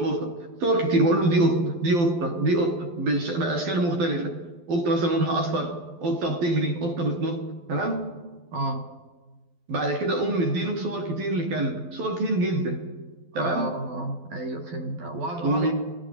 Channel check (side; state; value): left; late; 12 ms